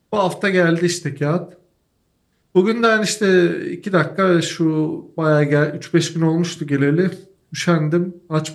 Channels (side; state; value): both; identical; correlation 1.00